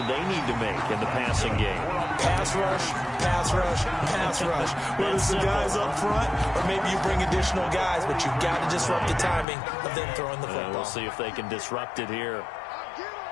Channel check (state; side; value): drops out; right; at 9.5 s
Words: they need to make in the passing game? Pass rush, pass rush, pass rush. Whether it's the guys up front or maybe you bring additional guys, but you've got to disrupt the timing of them throwing the football. We'll see if they can disrupt it here.